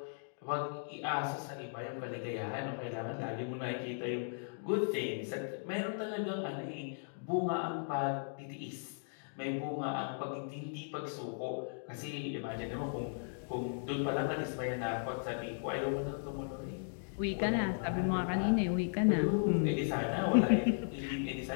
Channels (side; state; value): right; silent; digital silence